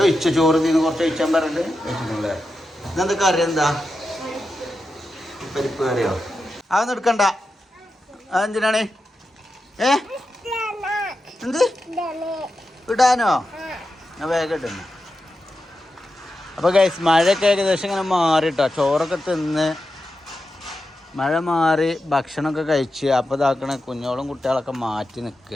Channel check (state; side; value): normal; both; correlation 0.90